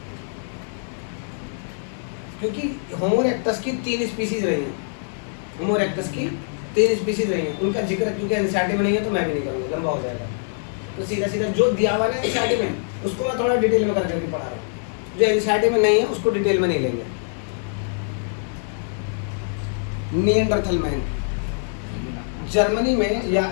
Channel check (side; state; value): right; silent; 62 dB below the other